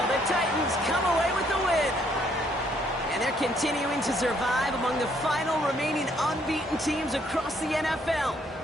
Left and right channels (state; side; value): normal; both; correlation 0.68